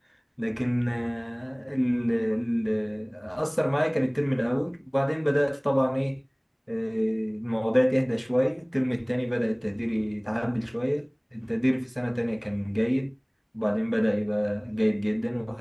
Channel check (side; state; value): both; identical; correlation 1.00